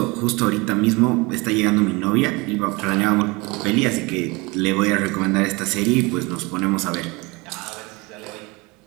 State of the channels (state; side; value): quieter; left; 25.4 dB